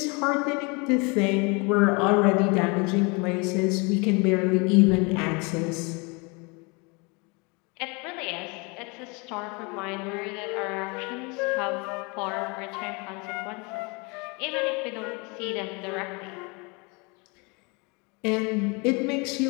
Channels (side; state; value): right; quieter; 29.7 dB